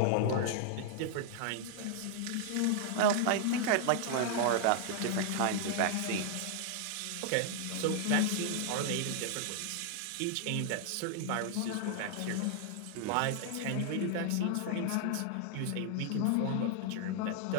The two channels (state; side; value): different; both; correlation 0.00